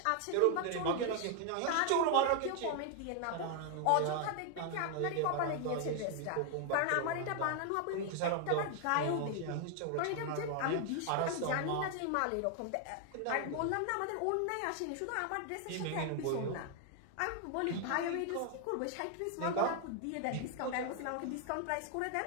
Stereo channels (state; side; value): different; both; correlation 0.00